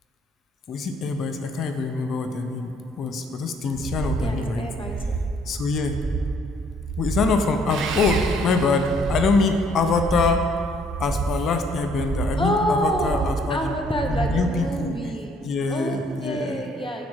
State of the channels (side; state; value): both; normal; correlation 0.64